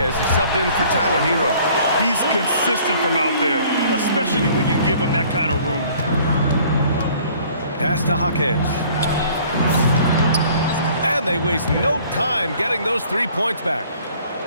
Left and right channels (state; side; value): inverted; both; correlation -0.55